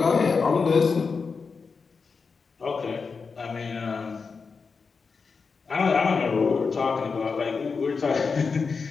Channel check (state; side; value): quieter; right; 5.0 dB